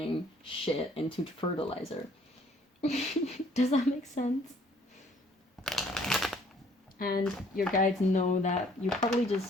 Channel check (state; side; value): normal; both; correlation 0.60